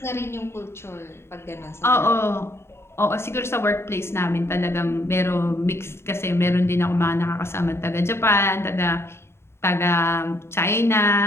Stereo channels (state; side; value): late; right; 0.12 ms